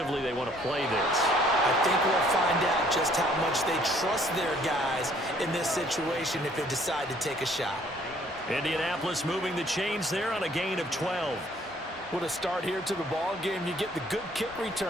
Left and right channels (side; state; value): both; normal; correlation 0.61